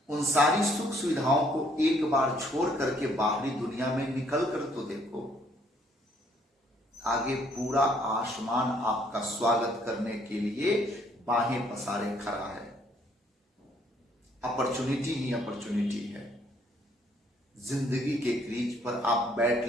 उन सारी सुख सुविधाओं को एक बार छोड़ करके बाहरी दुनिया में निकल कर तो देखो। आगे पूरा आसमान आपका स्वागत करने के लिए बाहें पसारे खड़ा है। अपॉर्चुनिटी ही अपॉर्चुनिटी है। जिंदगी के क्रीज पर आप बैट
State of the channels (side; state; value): both; normal; correlation 0.65